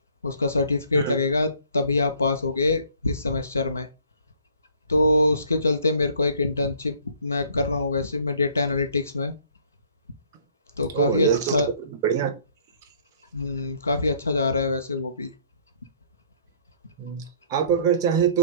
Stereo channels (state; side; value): inverted; both; correlation -0.57